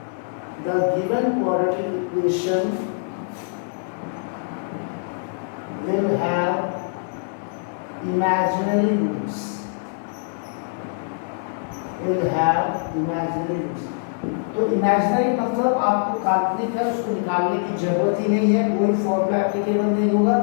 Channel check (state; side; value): silent; right; digital silence